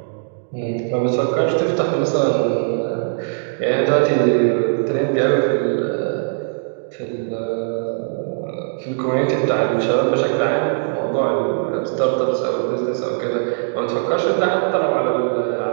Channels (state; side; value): silent; left; digital silence